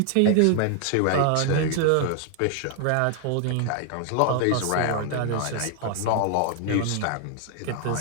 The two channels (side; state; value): both; different; correlation 0.00